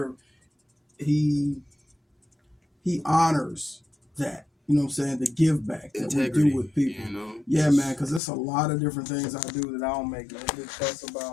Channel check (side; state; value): right; drops out; at 8.2 s